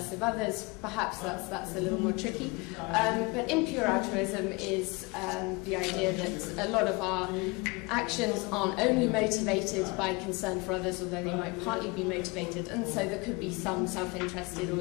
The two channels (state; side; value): quieter; right; 26.7 dB